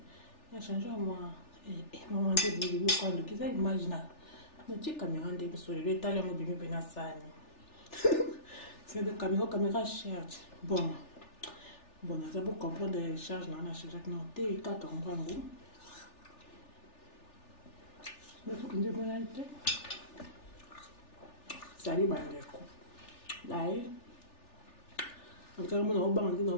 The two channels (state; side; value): late; right; 3.4 ms